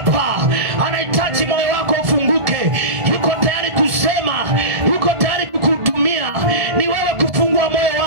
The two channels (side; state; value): left; late; 1.5 ms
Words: anahitaji moyo wako ufunguke. Yuko tayari kusema, yuko tayari kukuhudumia. Ni wewe kufungua moyo